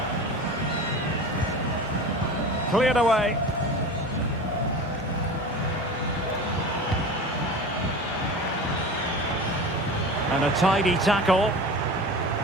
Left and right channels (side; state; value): both; normal; correlation 0.33